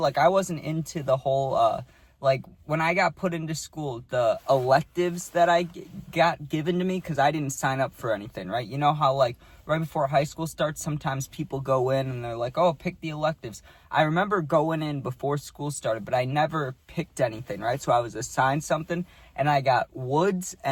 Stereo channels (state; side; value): identical; both; correlation 1.00